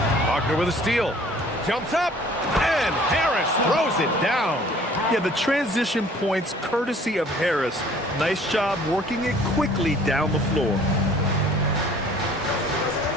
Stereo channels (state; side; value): normal; both; correlation 0.53